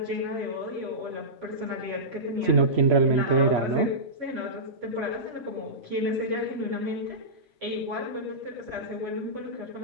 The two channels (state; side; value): late; left; 3.0 ms